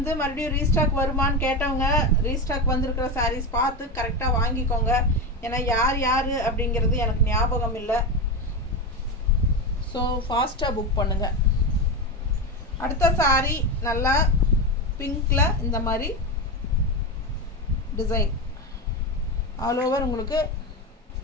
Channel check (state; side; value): normal; both; correlation 0.17